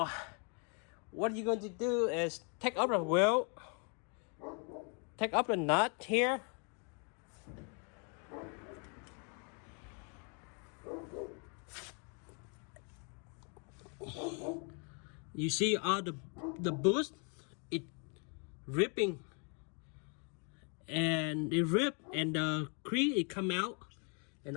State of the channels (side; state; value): right; quieter; 37.5 dB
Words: what you're going to do is take up the wheel, take up the nut here. You see all the boost, it ripping, and it rip and the crease it come out, and